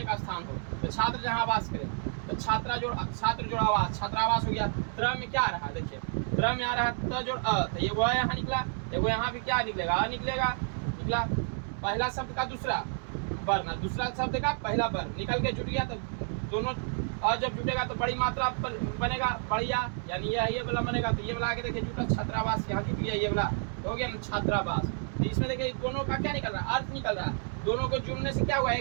का स्थान हो, तो छात्र जहाँ आवास करे, तो छात्र जोड़ आवास, छात्रावास हो गया। त्र में क्या आ रहा है? देखिए त्र में आ रहा है त जोड़ अ, तो ये वो यहाँ निकला, वो यहाँ भी क्या निकलेगा? अ निकला। पहला शब्द का दूसरा वर्ण, दूसरा शब्द का पहला वर्ण निकल के जुट गया, तो दोनों अ जब जुटेगा तो बड़ी मात्रा बनेगा, बढ़िया, यानी ये वाला बनेगा। तो ये वाला आगे देखिए जुटा, छात्रावास यहाँ जुट गया, ये वाला हो गया छात्रावास। तो इसमें देखिए दोनों का क्या निकल रहा है? अर्थ निकल रहा है। दोनों को जुड़ने से क्या हुआ?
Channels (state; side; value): silent; left; 58 dB below the other